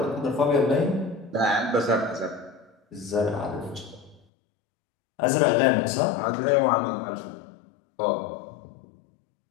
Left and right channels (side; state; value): right; drops out; at 4.2 s